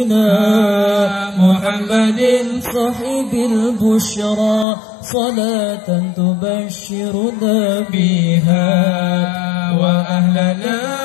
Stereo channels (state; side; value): drops out; right; at 4.7 s